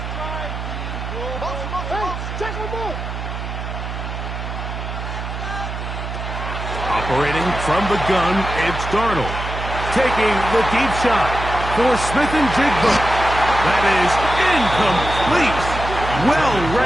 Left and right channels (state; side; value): noise; right; hum, 6 dB below the sound